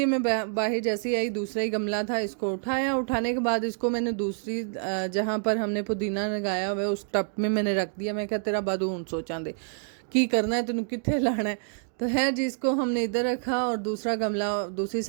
मैं बाहर जैसे ही आई दूसरा ही गमला था, इसको उठाया। उठाने के बाद इसको मैंने दूसरी जहाँ पर हमने पुदीना लगाया हुआ है उस टब में मैंने रख दिया। मैं क्या तेरा बादू हूँ सोचा दे की करना है, तेन कितने लाना है। तो है जी, इसको हमने इधर रखा और दूसरा गमला दूसरी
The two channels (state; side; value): silent; left; 60 dB below the other